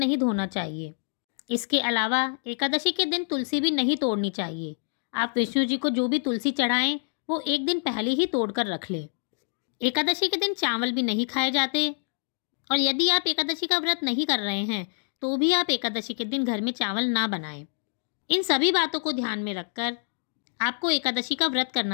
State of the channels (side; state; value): right; silent; digital silence